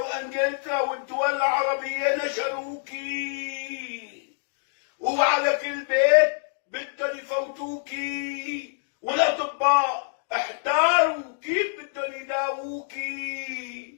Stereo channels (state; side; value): silent; right; digital silence